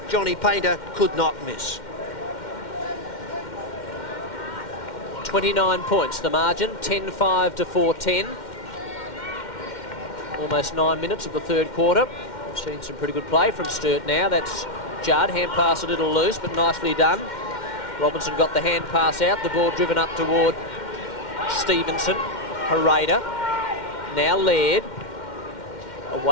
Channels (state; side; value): late; right; 2.1 ms